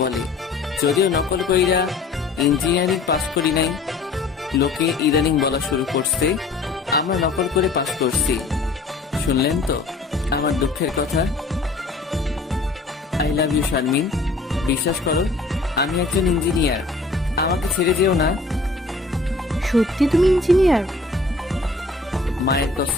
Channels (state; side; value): quieter; right; 3.6 dB